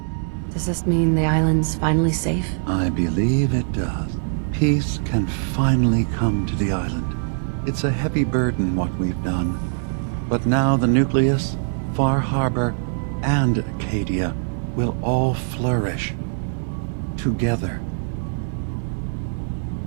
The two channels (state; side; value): silent; left; digital silence